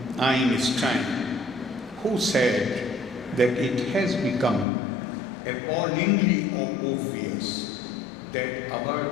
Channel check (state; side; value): drops out; right; at 4.7 s